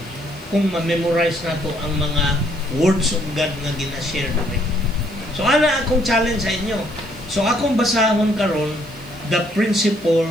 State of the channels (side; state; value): left; noise; hiss, 29 dB below the sound